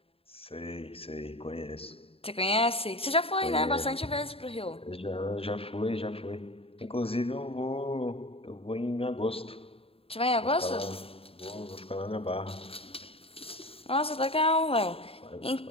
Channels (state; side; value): late; right; 0.27 ms